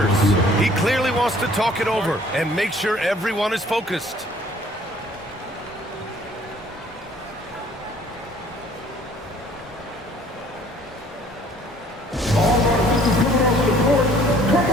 He clearly wants to talk it over and make sure everyone is focused. All right, this is coming off the court. Come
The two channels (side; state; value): both; normal; correlation 0.56